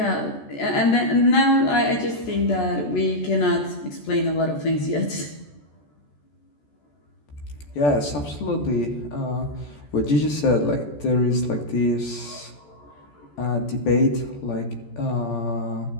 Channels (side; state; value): right; late; 14 ms